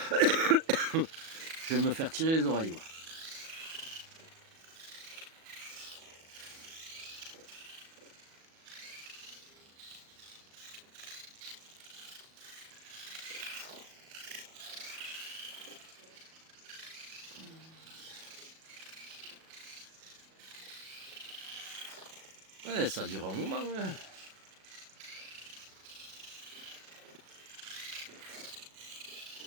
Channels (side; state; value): left; late; 37 ms